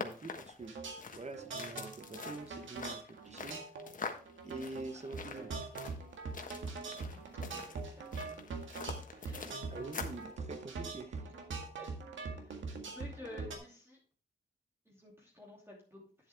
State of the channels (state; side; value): normal; both; correlation 0.35